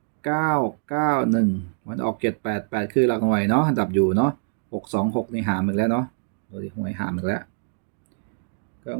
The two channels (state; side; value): silent; left; digital silence